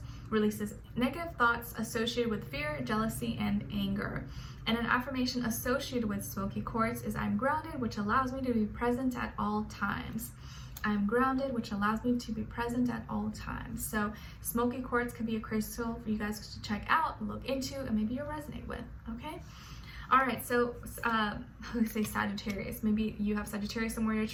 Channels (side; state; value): both; identical; correlation 1.00